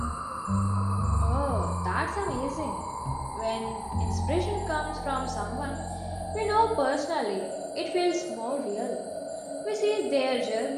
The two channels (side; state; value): both; identical; correlation 1.00